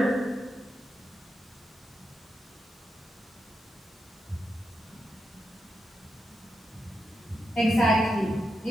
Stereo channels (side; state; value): both; normal; correlation 0.86